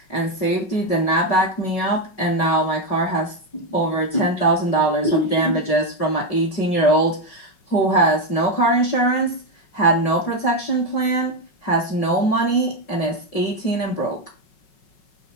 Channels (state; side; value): late; right; 5.4 ms